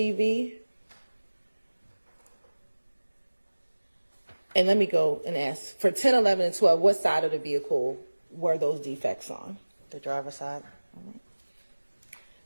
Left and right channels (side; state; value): both; inverted; correlation -1.00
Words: And let me go and ask, for 10, 11, and 12, what side of the vehicle were those defects on? The driver's side. All right.